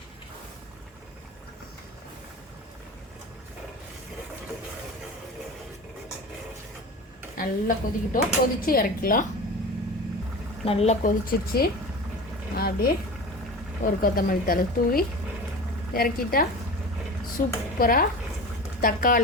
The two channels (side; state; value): both; normal; correlation 0.33